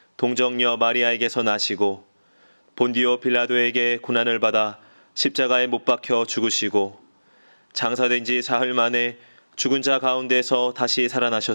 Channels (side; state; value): both; inverted; correlation -1.00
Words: 동정녀 마리아에게서 나시고 본디오 빌라도에게 고난을 받아 십자가에 못 박혀 죽으시고 장사된 지 사흘 만에 죽은 자 가운데서 다시